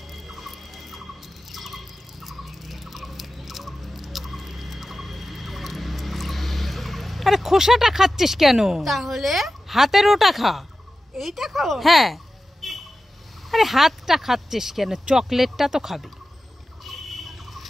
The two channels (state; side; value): normal; both; correlation 0.93